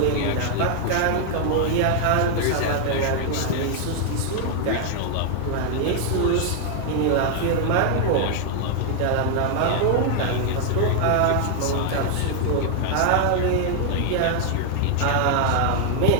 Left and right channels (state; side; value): different; both; correlation 0.00